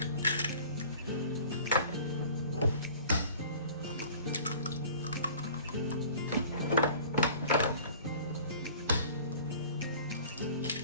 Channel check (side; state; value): both; inverted; correlation -0.47